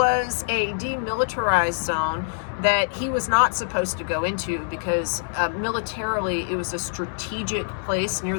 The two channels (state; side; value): silent; right; digital silence